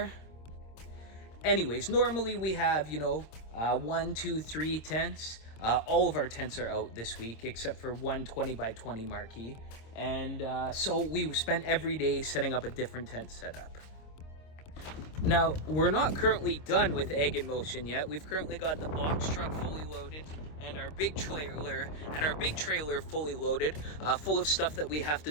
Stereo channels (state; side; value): late; right; 26 ms